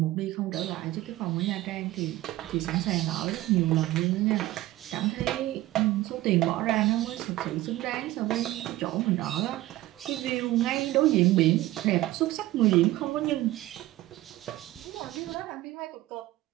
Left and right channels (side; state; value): left; quieter; 16.4 dB